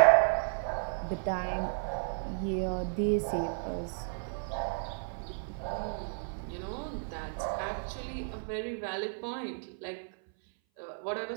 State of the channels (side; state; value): left; silent; 56 dB below the other